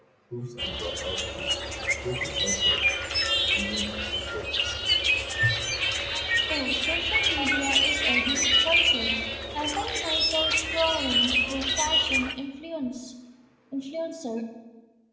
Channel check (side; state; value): both; identical; correlation 1.00